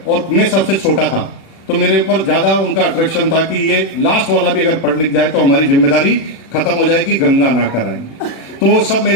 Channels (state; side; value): late; right; 36 ms